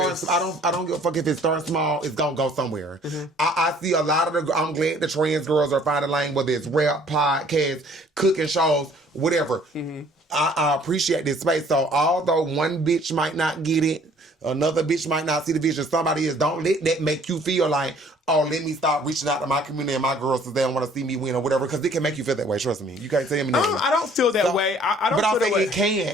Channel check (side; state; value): both; normal; correlation 0.57